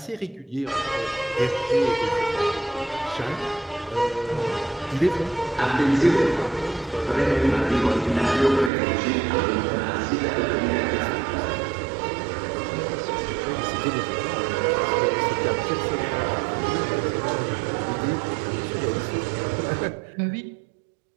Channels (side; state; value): left; drops out; at 8.7 s